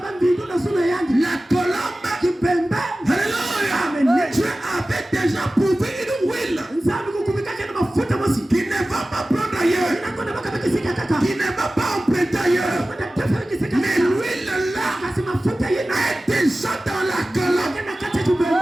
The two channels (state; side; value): normal; both; correlation 0.96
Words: colombe, alléluia, Dieu avait déjà prouvé une huile